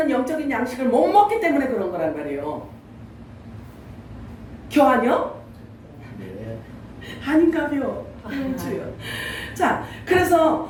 영적인 양식을 못 먹기 때문에 그런 거란 말이에요. 교환이요? 네. 아닌가요? 자, 그래서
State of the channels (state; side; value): identical; both; correlation 1.00